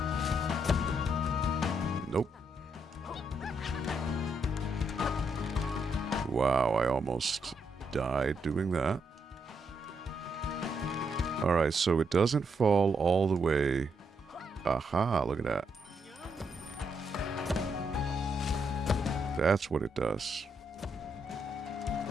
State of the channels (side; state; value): both; normal; correlation 0.78